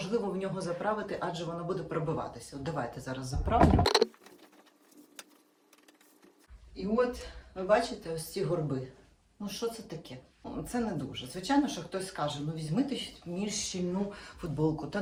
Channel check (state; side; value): identical; both; correlation 1.00